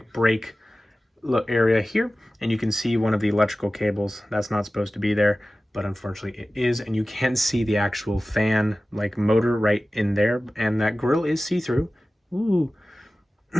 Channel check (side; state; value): both; normal; correlation 0.96